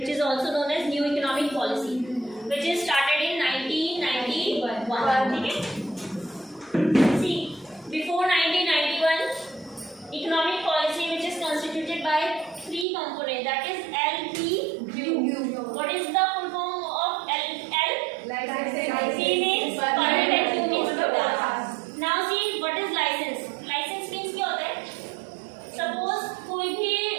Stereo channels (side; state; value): left; drops out; at 12.9 s